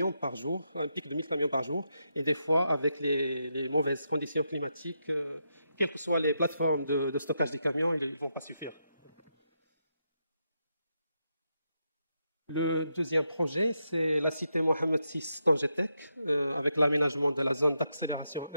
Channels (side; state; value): both; inverted; correlation -0.83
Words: par jour, un pic de 1000 camions par jour, et des fois, avec les mauvaises conditions climatiques, quelles que soient les plateformes de stockage des camions, ils ne vont pas suffire. Le deuxième projet, c'est la cité Mohamed VI Tangetek, avec l'aménagement de la zone d'accélération